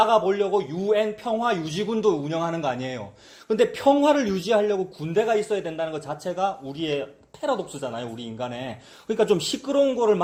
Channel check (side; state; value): both; identical; correlation 1.00